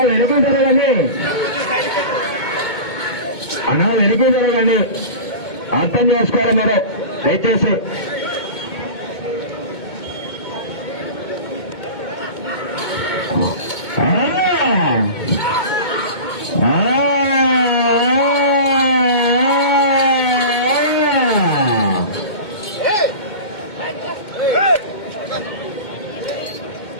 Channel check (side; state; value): right; late; 2.2 ms